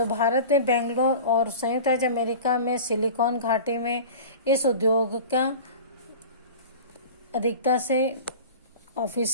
भारत में बेंगलोर और संयुक्त राज्य अमेरिका में सिलिकॉन घाटी में इस उद्योग का अधिकता से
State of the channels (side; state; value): both; inverted; correlation -0.36